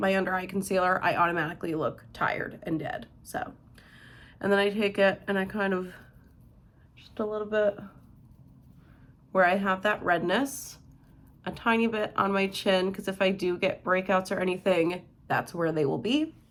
under eye concealer, I automatically look tired and dead. So, and then I take it and I kind of just a little bit where I have that redness, a tiny bit on my chin, because if I do get breakouts or anything, that's where they will be.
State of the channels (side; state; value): both; identical; correlation 1.00